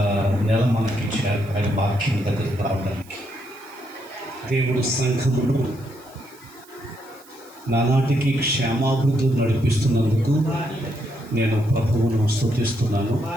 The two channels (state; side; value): noise; right; hiss, 25 dB below the sound